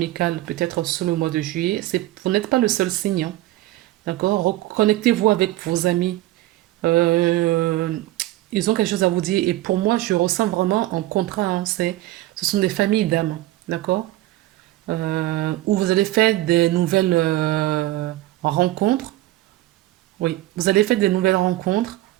peut-être sur le mois de juillet, vous n'êtes pas le seul signe. Hein, d'accord? Reconnectez-vous avec vos amis. Euh, Ils ont quelque chose à vous dire. Et pour moi, je ressens vraiment un contrat. Hein, ce sont des familles d'âmes. D'accord? Où vous allez faire des nouvelles rencontres. Oui, vous allez faire des nouvelles rencontres,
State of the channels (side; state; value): left; quieter; 16.3 dB